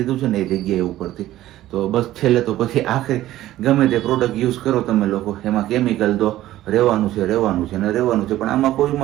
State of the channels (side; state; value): left; quieter; 14.5 dB